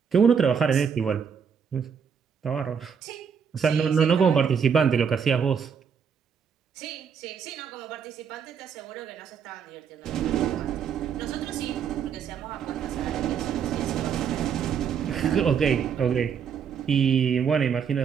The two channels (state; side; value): quieter; left; 7.1 dB